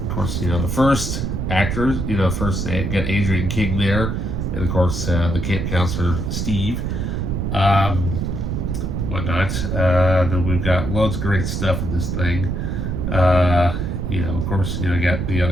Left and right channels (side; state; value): right; noise; rumble, 2 dB below the sound